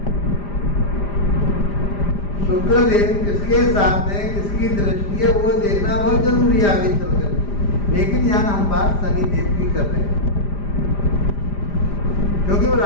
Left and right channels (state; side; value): late; right; 5.0 ms